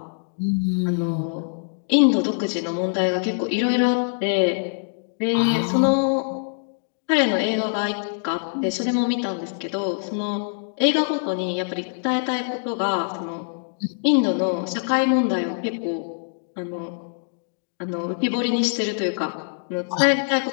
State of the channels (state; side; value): silent; right; digital silence